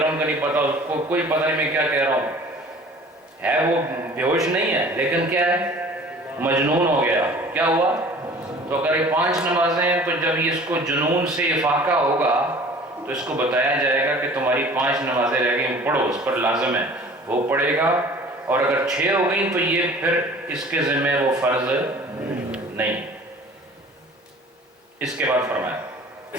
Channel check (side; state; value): both; normal; correlation 0.47